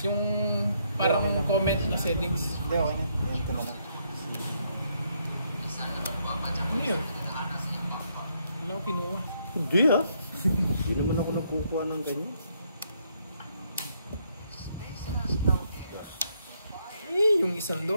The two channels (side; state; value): both; inverted; correlation -0.73